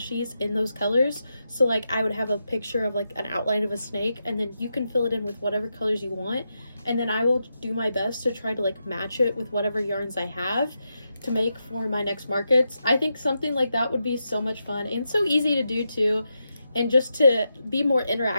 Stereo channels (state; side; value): inverted; both; correlation -0.86